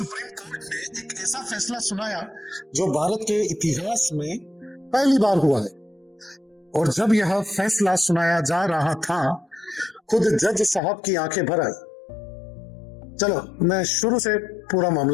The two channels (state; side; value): drops out; right; at 10.8 s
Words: कोर्ट ने एक ऐसा फैसला सुनाया जो भारत के इतिहास में पहली बार हुआ है। और जब यह फैसला सुनाया जा रहा था खुद जज साहब की आंखें भर आई। चलो मैं शुरू से पूरा